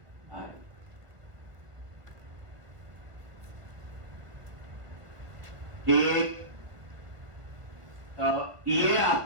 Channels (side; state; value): left; late; 1.4 ms